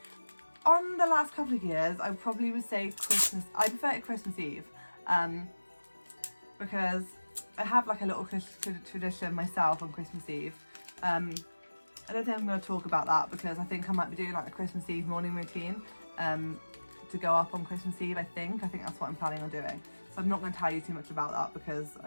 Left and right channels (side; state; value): both; inverted; correlation -1.00